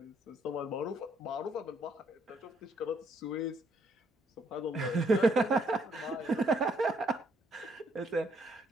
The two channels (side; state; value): both; normal; correlation 0.70